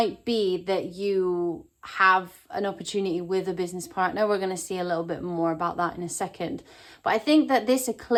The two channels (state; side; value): identical; both; correlation 1.00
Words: be that you have an opportunity with a business partner. We're going to see a little bit more about that in a second. But I think that this